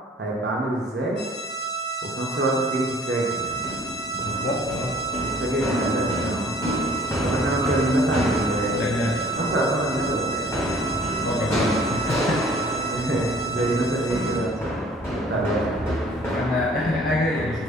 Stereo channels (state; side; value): normal; both; correlation 0.55